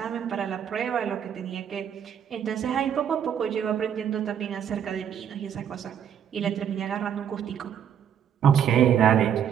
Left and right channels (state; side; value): quieter; left; 8.8 dB